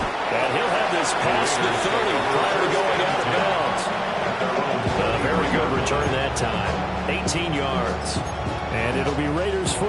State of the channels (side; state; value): both; identical; correlation 1.00